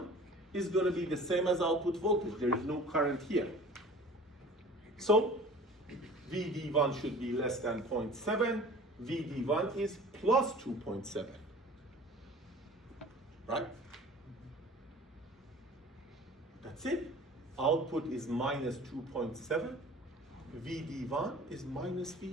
is going to be the same as output voltage. There is no current here. So VD1 should be less than 0.7. VD1 is plus 2.7. Right? That's it. Output is minus 2.7. VD1 is minus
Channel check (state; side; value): normal; both; correlation 0.44